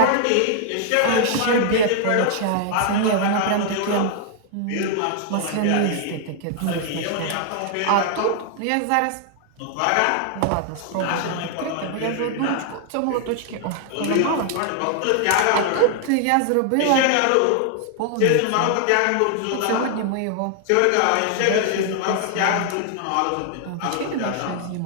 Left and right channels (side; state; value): both; different; correlation 0.00